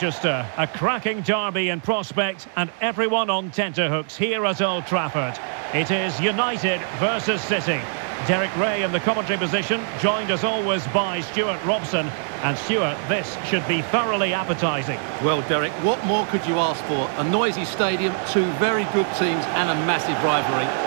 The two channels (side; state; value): left; silent; digital silence